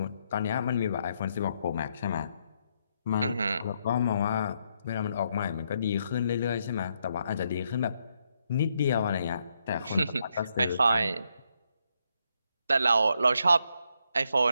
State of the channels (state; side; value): inverted; both; correlation -0.77